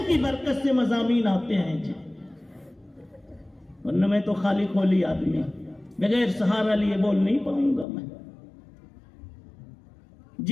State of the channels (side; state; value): right; drops out; at 7.9 s